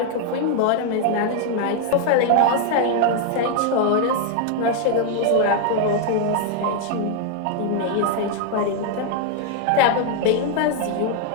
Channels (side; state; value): both; different; correlation 0.00